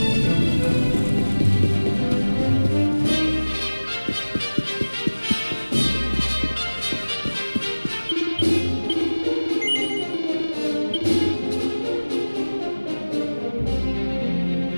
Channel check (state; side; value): inverted; both; correlation -1.00